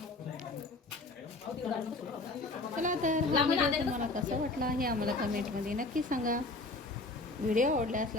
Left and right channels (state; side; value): quieter; right; 3.1 dB